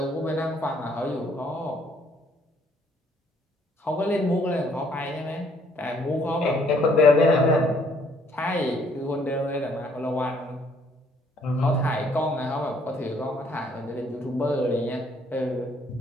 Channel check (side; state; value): both; normal; correlation 0.64